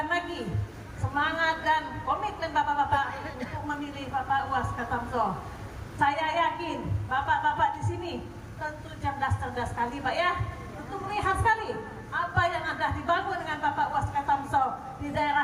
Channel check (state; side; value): identical; both; correlation 1.00